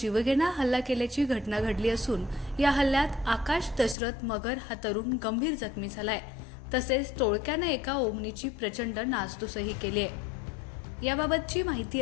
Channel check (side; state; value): right; drops out; at 4.0 s